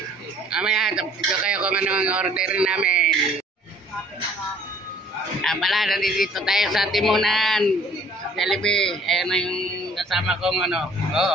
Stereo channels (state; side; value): normal; both; correlation 0.56